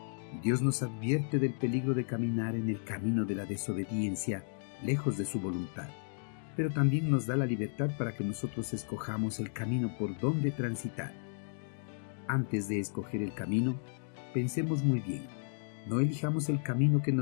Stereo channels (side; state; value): right; silent; digital silence